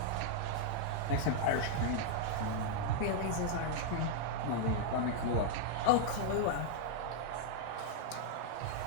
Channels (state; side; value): different; both; correlation -0.01